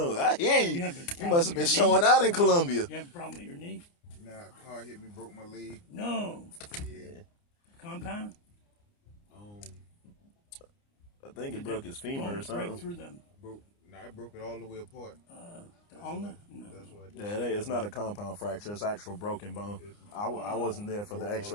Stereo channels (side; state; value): right; late; 29 ms